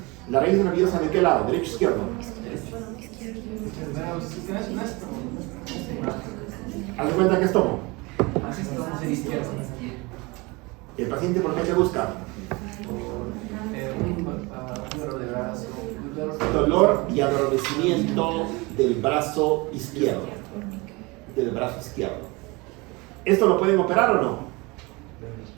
¿La raíz nerviosa de qué lado? ¿Derecho o izquierdo? Haz de cuenta que es tomo. ¿El paciente por qué te busca? Dolor y adormecimiento del brazo izquierdo. ¿Esto lo pueden operar o no?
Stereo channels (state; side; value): quieter; left; 25.3 dB